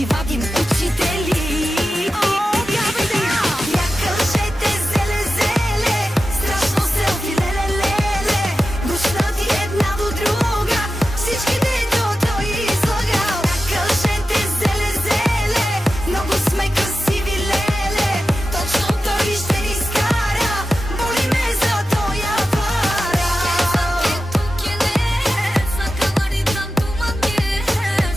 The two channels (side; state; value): both; normal; correlation 0.93